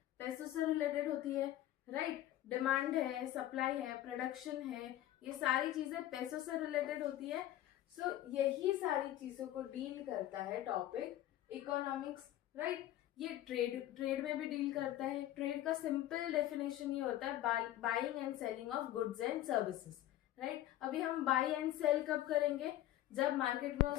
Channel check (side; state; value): right; quieter; 13.6 dB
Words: पैसों से रिलेटेड होती है। राइट, डिमांड है, सप्लाई है, प्रोडक्शन है, ये सारी चीजें पैसों से रिलेटेड होती है। सो यही सारी चीजों को डील करता है टॉपिक इकोनॉमिक्स। राइट, ये ट्रेड में भी डील करता है। ट्रेड का सिंपल डेफिनेशन ये होता है buying and selling of goods and services. Right, अभी हम बाई एंड सेल कब करेंगे? जब मार्केट में